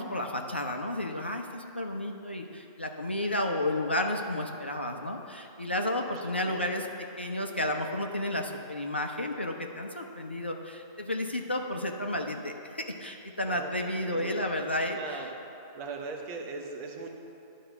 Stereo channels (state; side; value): inverted; both; correlation -0.47